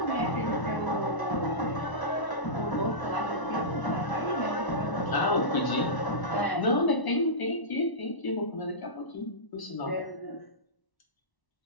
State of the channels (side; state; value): right; late; 1.0 ms